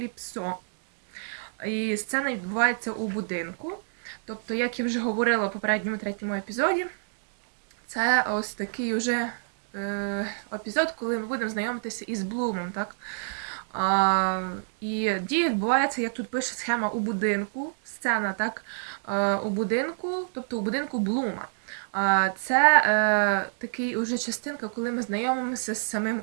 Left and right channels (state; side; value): silent; left; digital silence